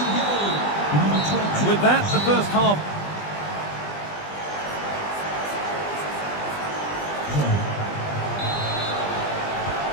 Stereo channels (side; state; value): right; late; 20 ms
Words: And with that, the first half.